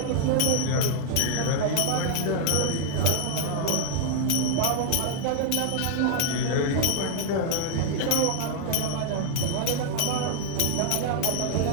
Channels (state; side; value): different; both; correlation -0.01